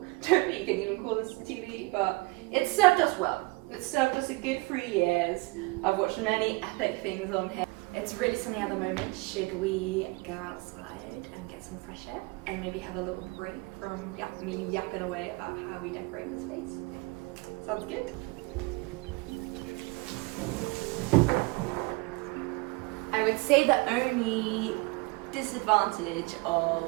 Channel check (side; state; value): left; quieter; 25.3 dB